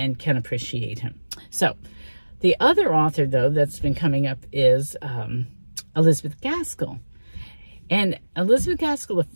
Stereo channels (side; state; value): both; inverted; correlation -1.00